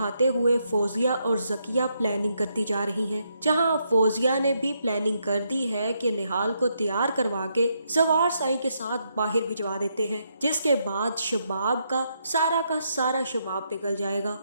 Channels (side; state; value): both; inverted; correlation -0.78